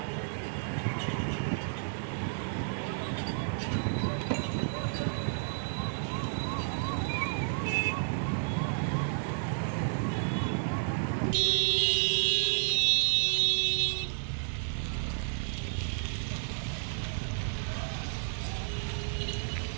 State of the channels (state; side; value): silent; left; 57 dB below the other